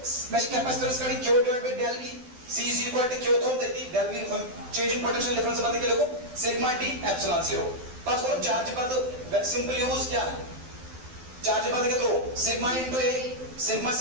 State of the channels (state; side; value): late; left; 12 ms